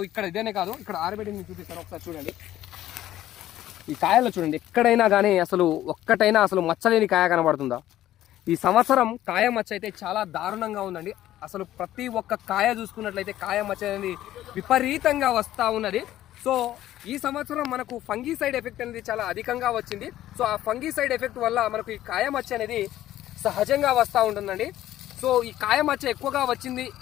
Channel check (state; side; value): quieter; right; 13.4 dB